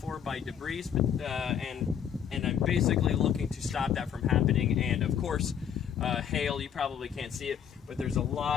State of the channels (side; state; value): right; quieter; 8.6 dB